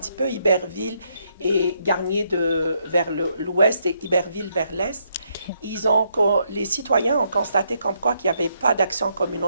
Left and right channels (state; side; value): inverted; both; correlation -0.75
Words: peu Iberville et Garnier vers l'ouest et Iberville vers l'est. Les citoyens ont constaté comme quoi qu'il n'y avait pas d'action